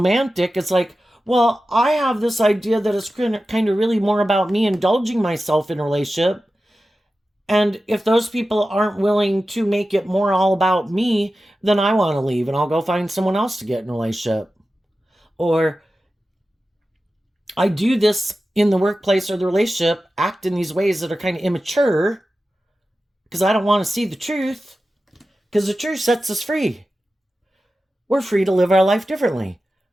it's like, well, I have this idea that it's kind of really more about me indulging myself in a relationship. And if those people aren't willing to make it more all about me, then I want to leave and I'll go find someone else to get in a relationship. Or I do this in the workplace or the relationship, act in these ways that are kind of immature because I don't want to see the truth. because the truth sets us free. We're free to live our life differently.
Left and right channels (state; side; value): normal; both; correlation 0.94